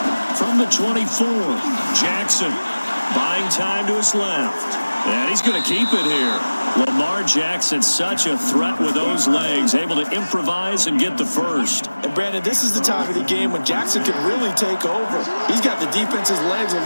From the 24, Jackson buying time to his left. And he's going to keep it here. Lamar Jackson, such a threat with those legs, able to improvise and get the first. And Brandon, this is the time of the game when Jackson can really take over. He's got the defense's legs a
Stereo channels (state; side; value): inverted; both; correlation -1.00